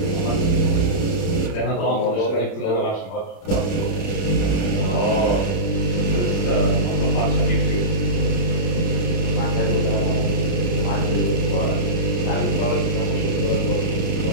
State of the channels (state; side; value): late; right; 31 ms